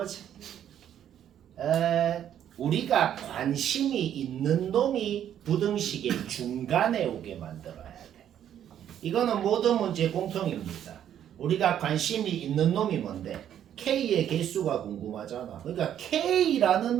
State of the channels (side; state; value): left; quieter; 10.2 dB